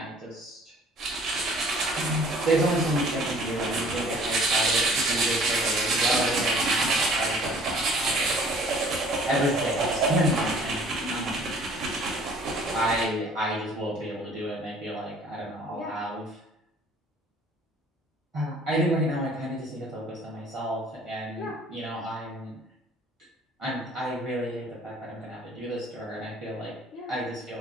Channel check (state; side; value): normal; both; correlation 0.53